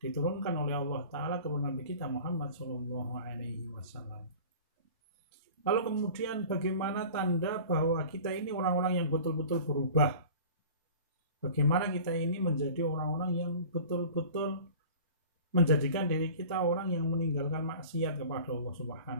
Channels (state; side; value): inverted; both; correlation -0.41